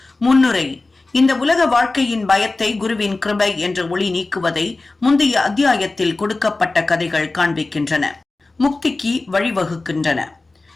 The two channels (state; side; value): quieter; right; 3.3 dB